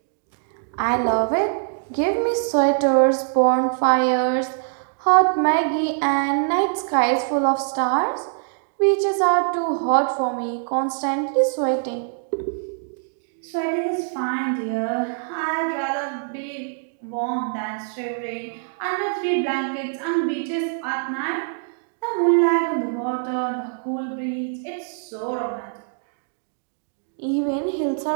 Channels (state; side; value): silent; left; digital silence